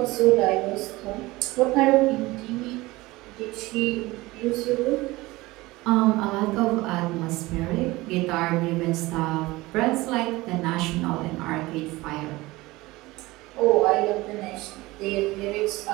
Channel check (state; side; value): quieter; left; 20.3 dB